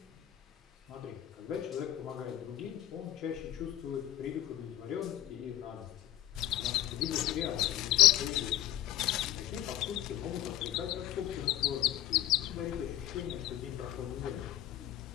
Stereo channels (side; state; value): right; quieter; 13.1 dB